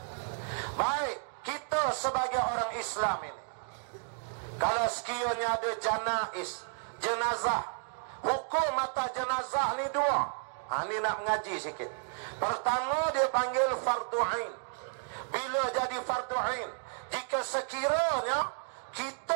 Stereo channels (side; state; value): left; silent; digital silence